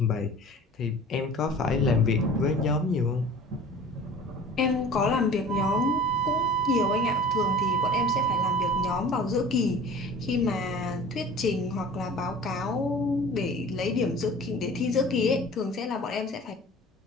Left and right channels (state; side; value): normal; both; correlation 0.43